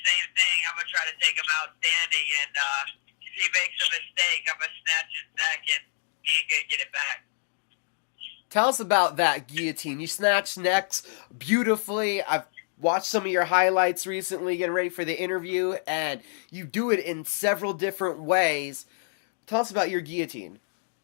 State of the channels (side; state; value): right; silent; digital silence